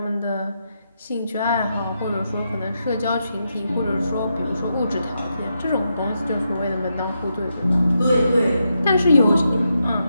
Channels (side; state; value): both; inverted; correlation -0.84